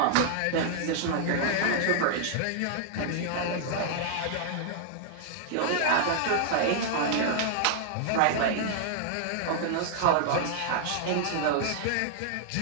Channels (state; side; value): different; both; correlation -0.01